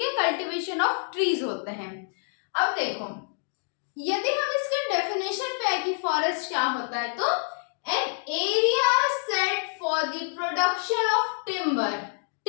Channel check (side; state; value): right; silent; 60 dB below the other